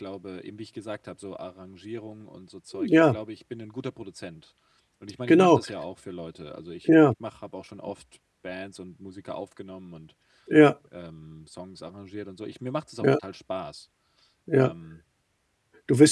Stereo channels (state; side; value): identical; both; correlation 1.00